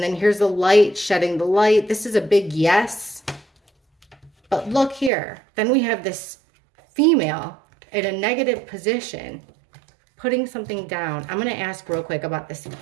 then here's the light, shedding the light. This is a big yes. But look here. Then we have this female in a negative position, putting something down. I'm going to ask real quick about this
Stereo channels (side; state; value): left; drops out; at 5.1 s